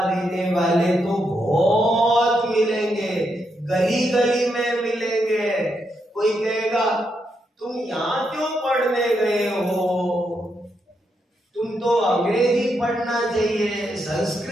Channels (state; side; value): normal; both; correlation 0.81